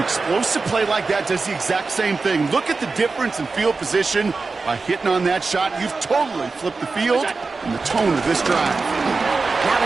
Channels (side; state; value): left; quieter; 4.1 dB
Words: play like that does the exact same thing. Look at the difference in field position. By hitting on that shot, you've totally flipped the field and the tone of this drive. Now